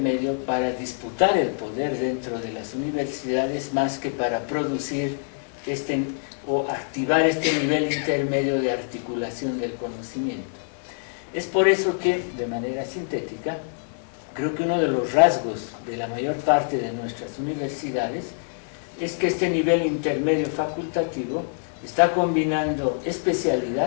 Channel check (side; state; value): right; silent; 62 dB below the other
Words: para disputar el poder dentro de las universidades más que para producir o activar este nivel intermedio de articulación del conocimiento. Es por eso que, de manera sintética, creo que uno de los rasgos de la mayor parte de nuestras universidades es que este nivel intermedio facultativo está combinando